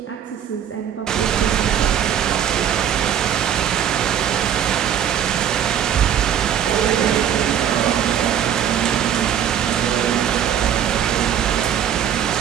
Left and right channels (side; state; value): left; quieter; 9.3 dB